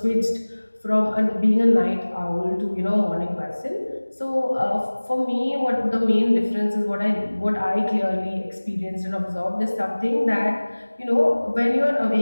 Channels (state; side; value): inverted; both; correlation -1.00